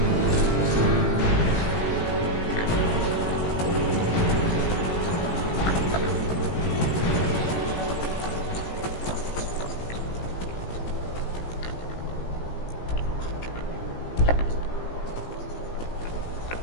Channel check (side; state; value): right; late; 17 ms